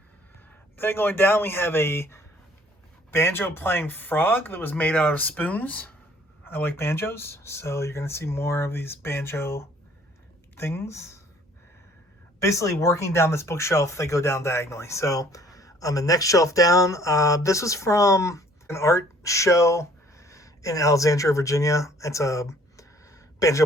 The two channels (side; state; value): both; normal; correlation 0.57